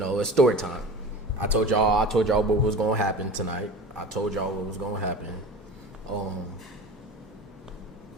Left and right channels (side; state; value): both; normal; correlation 0.35